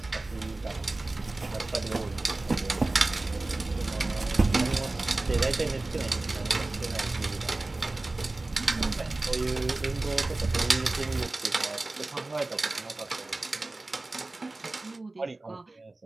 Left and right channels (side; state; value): left; quieter; 3.0 dB